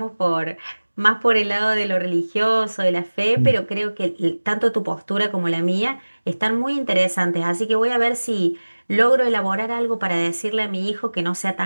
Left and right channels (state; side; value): inverted; both; correlation -1.00